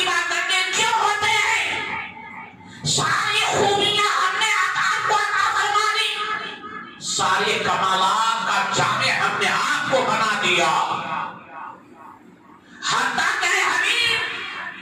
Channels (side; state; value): both; identical; correlation 1.00